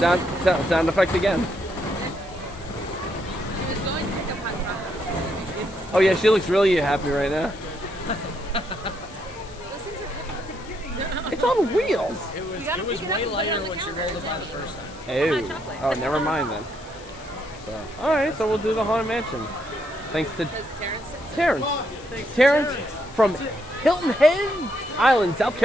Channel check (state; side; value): noise; left; hiss, 21 dB below the sound